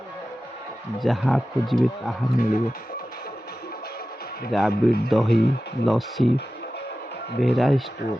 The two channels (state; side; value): normal; both; correlation 0.94